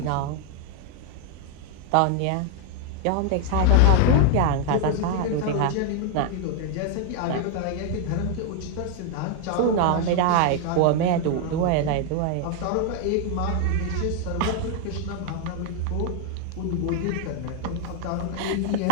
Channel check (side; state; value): both; different; correlation 0.00